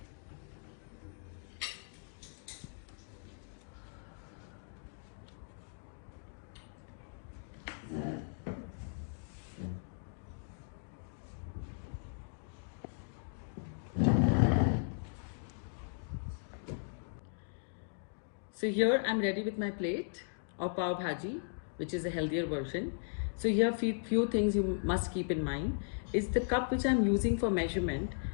So here I'm ready with my plate of pav bhaji, which is a healthier version. So here few things you must keep in mind is the cup which I'm using for measurement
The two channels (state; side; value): silent; right; digital silence